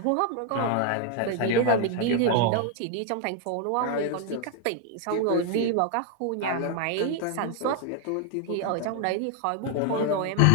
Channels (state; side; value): different; both; correlation 0.01